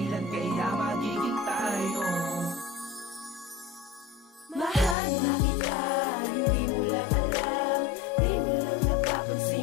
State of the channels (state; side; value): drops out; right; at 5.0 s